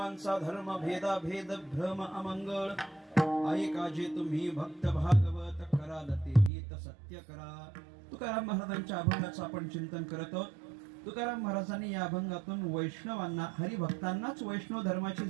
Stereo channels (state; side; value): drops out; left; at 6.5 s